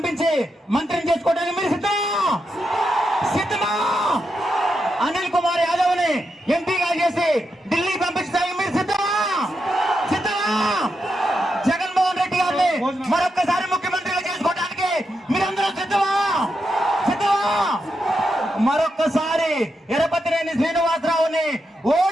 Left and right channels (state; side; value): normal; both; correlation 0.85